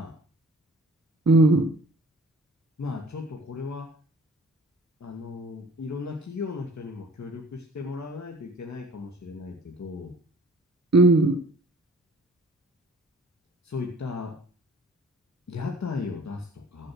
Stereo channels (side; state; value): both; normal; correlation 0.50